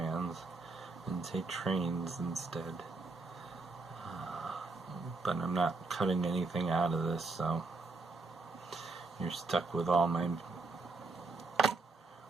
and say trains instead. But I'm not cutting anything out of this, so you're stuck with all my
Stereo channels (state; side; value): quieter; left; 3.7 dB